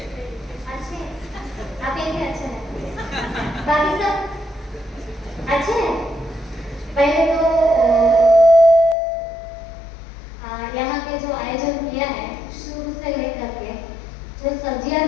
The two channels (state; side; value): drops out; right; at 9.0 s